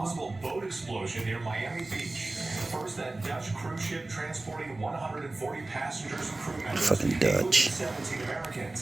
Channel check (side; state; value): left; quieter; 3.0 dB